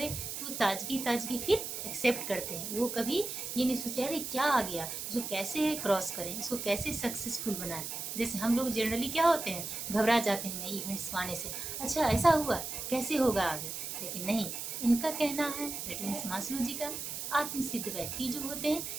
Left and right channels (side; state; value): right; noise; hiss, 5 dB below the sound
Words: तो ताजगी फिर एक्सेप्ट करते हैं। वो कभी ये नहीं सोचते अरे क्या आ गया, इसको कैसे क्रॉस करें, इसको कैसे सक्सेसफुल बनाएं। जैसे हम लोग जनरली क्या होते हैं, घबरा जाते हैं नई इवेंट्स को आने से, अच्छा ऐसा हुआ कैसे होगा आगे। लेकिन नहीं, इनका कहना है, दैट मीन्स मास्लो जी का, आत्मसिद्ध व्यक्ति जो होते हैं